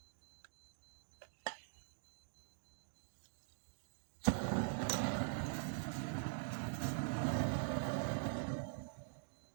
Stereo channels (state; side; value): silent; left; digital silence